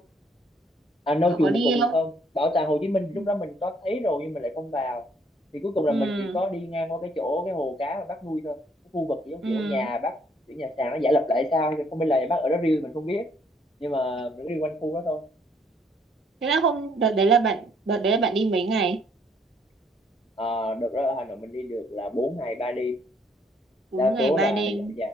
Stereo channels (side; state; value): both; normal; correlation 0.66